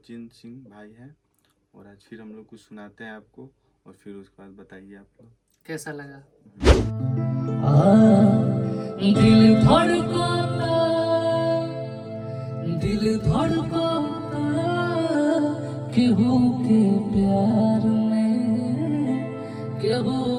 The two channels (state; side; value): identical; both; correlation 1.00